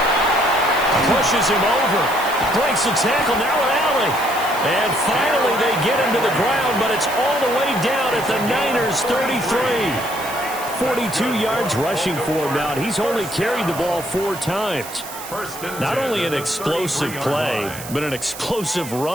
Pushes him over. Breaks the tackle, now an alley. And finally they get him to the ground, but it's all the way down at the Niners' 33. 42 yards rushing for him now. He's only carried the ball 4 times. Not only an explosive play, but an explosive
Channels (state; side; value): noise; right; hiss, 12 dB below the sound